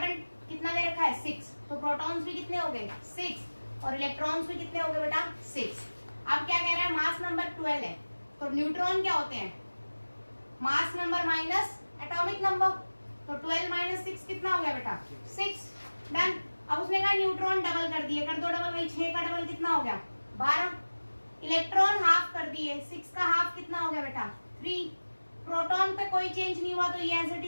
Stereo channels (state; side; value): inverted; both; correlation -1.00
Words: कितना दे रखा है 6, तो प्रोटॉन्स भी कितने हो गए 6 और इलेक्ट्रॉन्स भी कितने हो गए बेटा 6। अब क्या कह रहा है, मास नंबर 12 है, तो न्यूट्रॉन क्या होते हैं, mass number minus atomic number, तो 12 माइनस 6 कितना हो गया बेटा 6। डन। अब उसने कहा न्यूट्रॉन डबल कर दिए, कर दो डबल, भाई 6 का डबल कितना हो गया 12। इलेक्ट्रॉन हाफ कर दिए, 6 का हाफ कितना हो गया बेटा 3। प्रोटॉन पे कोई चेंज नहीं हुआ तो ये एज इट